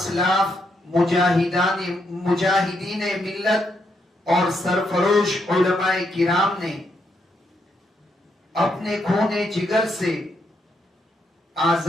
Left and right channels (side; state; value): both; normal; correlation 0.78